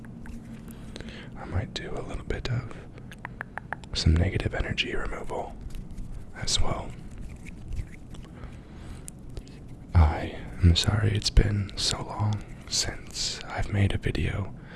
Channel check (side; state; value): both; identical; correlation 1.00